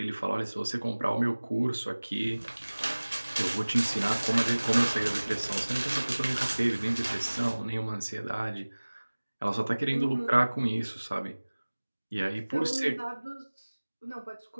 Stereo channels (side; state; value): both; inverted; correlation -1.00